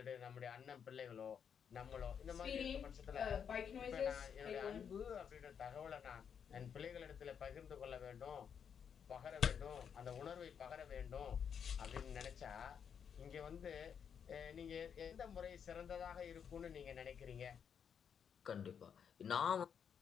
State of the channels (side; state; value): right; quieter; 7.5 dB